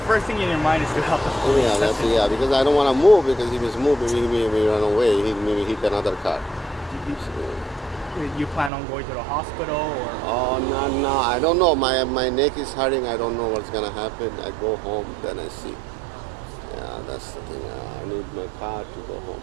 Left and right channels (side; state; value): left; drops out; at 8.7 s